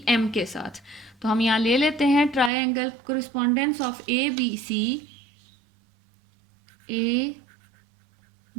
एम के साथ। तो हम यहाँ ले लेते हैं triangle correspondence of A B C, A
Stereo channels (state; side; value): drops out; left; at 2.5 s